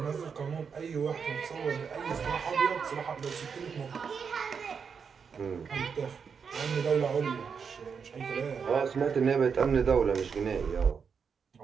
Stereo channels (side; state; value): left; quieter; 6.2 dB